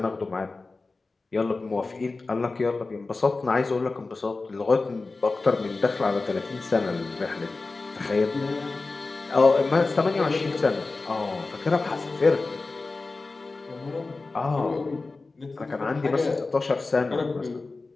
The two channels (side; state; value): right; quieter; 3.7 dB